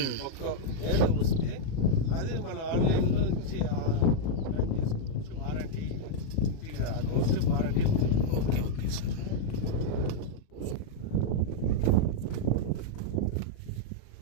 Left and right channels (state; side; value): late; right; 37 ms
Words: ఒకవేళ వస్తే అది మన ఆన్లైన్ లో నుంచి క్లెయిమ్ చేసుకోవచ్చు. వారంటీ ఇంటికి డోర్ స్టెప్ వారంటీ ఉంది. Okay okay sir.